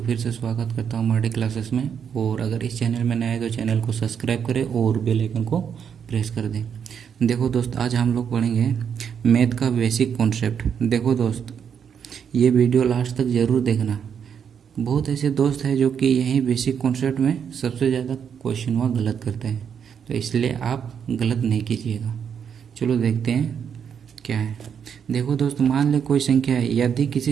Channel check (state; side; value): quieter; left; 7.6 dB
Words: फिर से स्वागत करता हूं मार्डी क्लासेस में। और अगर इस चैनल में नए हैं तो चैनल को सब्सक्राइब करें और बेल आइकन को प्रेस कर दें। देखो दोस्त, आज हम लोग पढ़ेंगे मैथ का बेसिक कॉन्सेप्ट। देखो दोस्त, ये वीडियो लास्ट तक ज़रूर देखना। बहुत ऐसे दोस्त हैं जो कि यही बेसिक कॉन्सेप्ट में सबसे ज़्यादा क्वेश्चन वहाँ गलत करते हैं, तो इसलिए आप गलत नहीं कीजिएगा। चलो देखते हैं क्या है। देखो दोस्त, मान ले कोई संख्या है, यदि